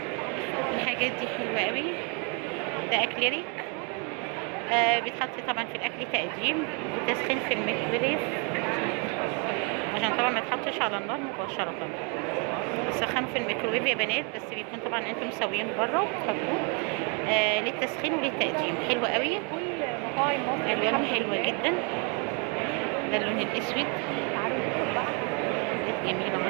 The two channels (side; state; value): left; quieter; 35.8 dB